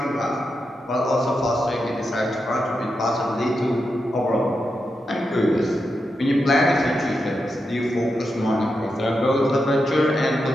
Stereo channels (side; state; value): both; normal; correlation 0.87